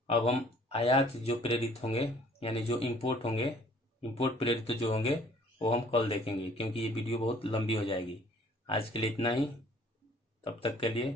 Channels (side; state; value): both; normal; correlation 0.56